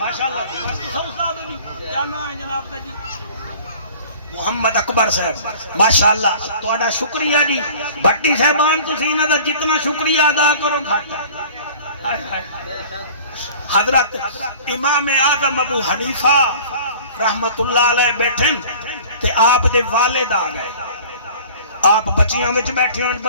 استاد بھی کیا نام ہے جناب دا جی؟ محمد اکبر صاحب، ماشاءاللہ تہاڈا شکریہ جی۔ بھٹی صاحبان تسی انہاں دا جتنا شکریہ ادا کرو گھٹ ہے۔ حضرت امام اعظم ابو حنیفہ رحمت اللہ علیہ بیٹھن تے آپ دے والد آ گئے، آپ بچیاں وچ بیٹھے ہیں،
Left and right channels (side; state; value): both; inverted; correlation -0.45